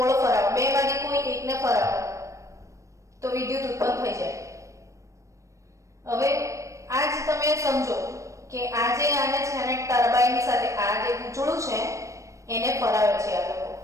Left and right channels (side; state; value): left; late; 0.15 ms